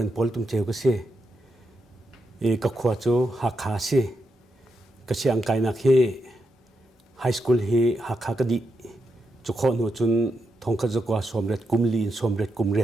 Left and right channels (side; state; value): both; normal; correlation 0.85